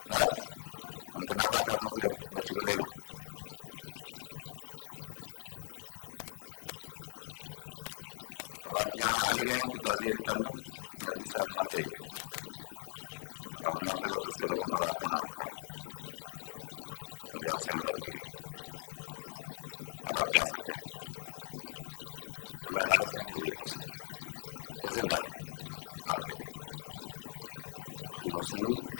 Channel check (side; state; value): right; silent; digital silence